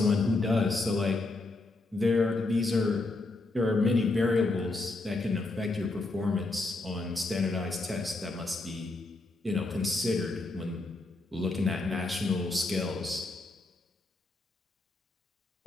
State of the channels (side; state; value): right; quieter; 3.1 dB